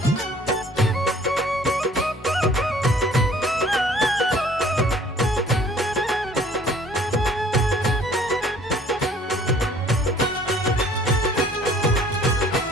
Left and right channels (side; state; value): both; normal; correlation 0.54